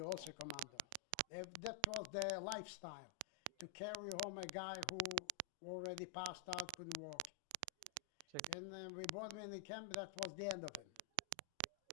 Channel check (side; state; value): both; different; correlation 0.00